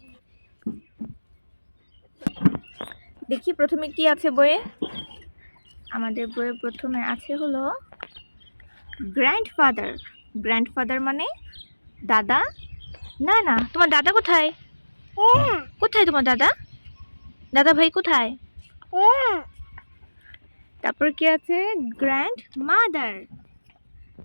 দেখি প্রথমে কি আছে বইয়ে। আমাদের বইয়ে প্রথমে আছে হলো গ্র্যান্ডফাদার। গ্র্যান্ডফাদার মানে দাদা। না না, তোমার দাদা কোথায়? কোথায় তোমার দাদা? দাদা ভাই কোথায়? তারপর কি আছে গ্র্যান্ড মাদার।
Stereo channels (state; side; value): inverted; both; correlation -1.00